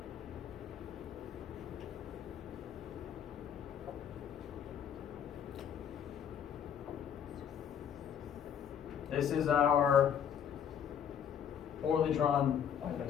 this is our poorly drawn, why did I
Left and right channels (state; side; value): quieter; right; 8.6 dB